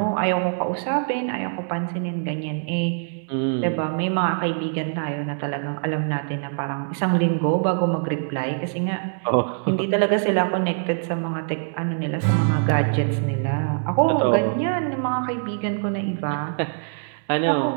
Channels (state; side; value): silent; left; digital silence